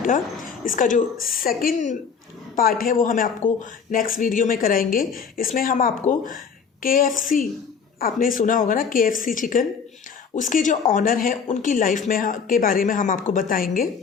इसका जो सेकंड पार्ट है वो हमें आपको नेक्स्ट वीडियो में कराएंगे। इसमें हम आपको KFC, आपने सुना होगा ना KFC चिकन, उसके जो ऑनर हैं उनकी लाइफ में के बारे में हम आपको बताएंगे।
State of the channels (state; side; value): quieter; right; 6.2 dB